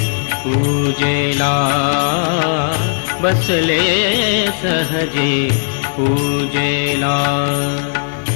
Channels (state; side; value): silent; right; digital silence